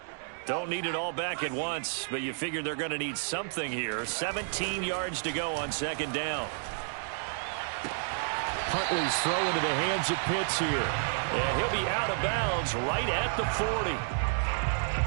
Don't need it all back at once, but you figure they're going to need something here. 17 yards to go on 2nd down. Huntley's throw into the hands of Pitts here. And he'll be out of bounds right at the 40.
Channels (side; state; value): left; silent; digital silence